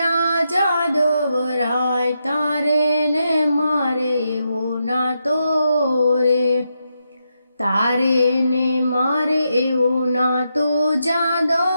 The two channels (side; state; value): both; inverted; correlation -0.83